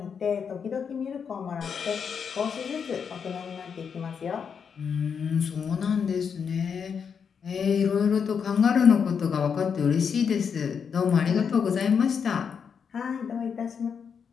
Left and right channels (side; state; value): right; quieter; 6.7 dB